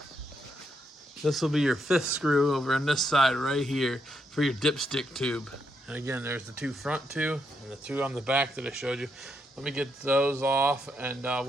This will be your 5th screw over on this side right here for your dipstick tube. And again, there's the 2 front 2 and the 2 on the back that I showed you. Let me get those off, and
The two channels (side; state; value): both; normal; correlation 0.79